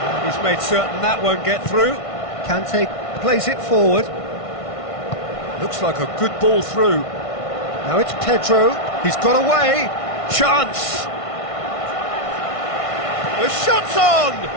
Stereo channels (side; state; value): right; late; 1.5 ms